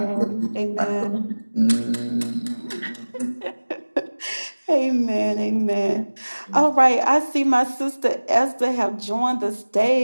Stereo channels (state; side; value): inverted; both; correlation -1.00